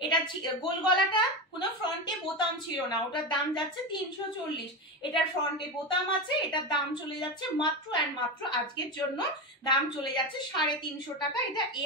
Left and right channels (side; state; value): both; normal; correlation 0.18